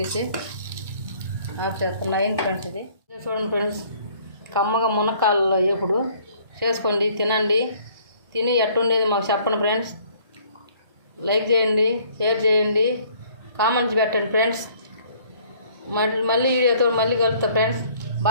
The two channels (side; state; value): both; inverted; correlation -0.59